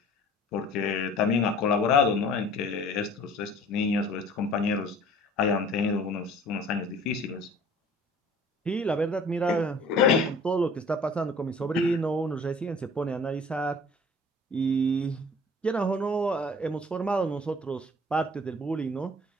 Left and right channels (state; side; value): normal; both; correlation 0.49